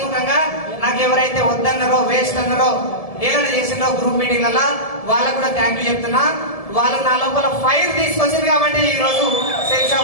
నాకు ఎవరైతే వద్దన్నారో, వేస్ట్ అన్నారో, ఏదైనా చేసినారో గ్రూప్ మీటింగ్లలో వాళ్ళకు కూడా థ్యాంక్ యూ చెప్తున్నా. వాళ్ళు నా లోపల ఫైర్ తీసుకొచ్చింది కాబట్టి ఈ రోజు సేఫ్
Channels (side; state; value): right; late; 1.7 ms